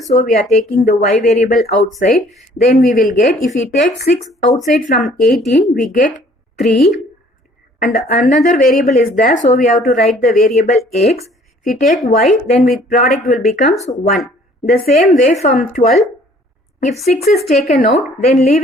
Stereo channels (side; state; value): both; normal; correlation 0.57